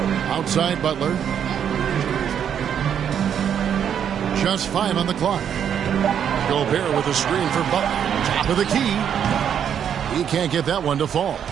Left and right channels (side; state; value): left; quieter; 8.6 dB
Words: Outside Butler. Just 5 on the clock. Gobert with a screen for Butler. Top of the key. He can't get that one to fall.